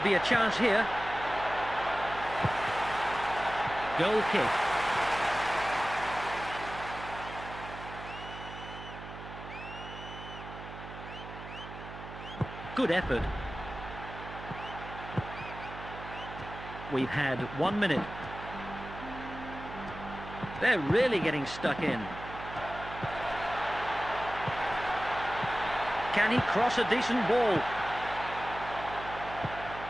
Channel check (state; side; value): noise; right; hum, 12 dB below the sound